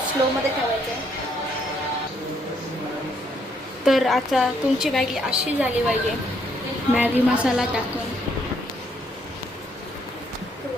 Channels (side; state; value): both; normal; correlation 0.70